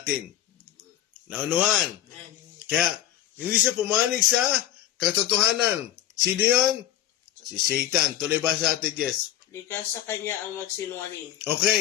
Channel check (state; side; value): quieter; right; 12.5 dB